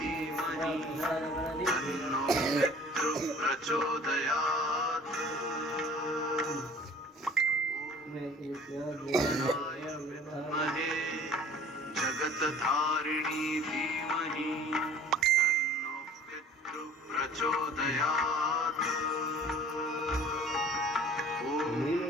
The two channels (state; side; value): normal; both; correlation 0.48